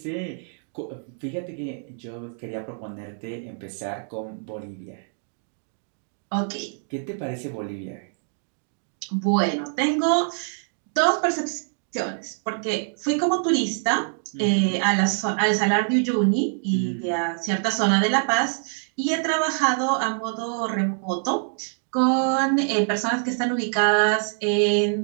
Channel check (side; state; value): left; silent; 62 dB below the other